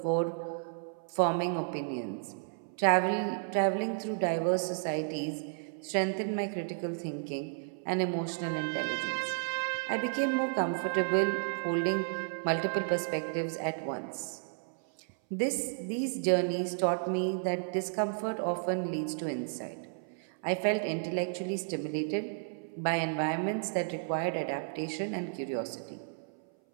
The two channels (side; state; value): left; silent; 56 dB below the other